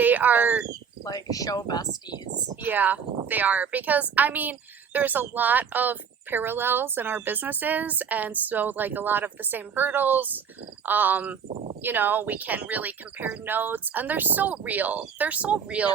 are, Like, show besties. yeah, they are. Because, I mean, there's a lot of parallels in our businesses, and so, like, a lot of the same hurdles. We can really compare notes, and they're so real. They're so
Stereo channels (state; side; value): quieter; left; 6.9 dB